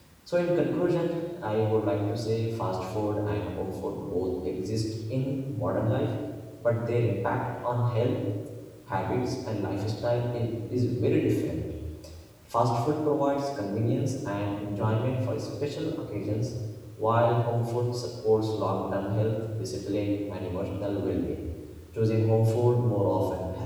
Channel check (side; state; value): both; identical; correlation 1.00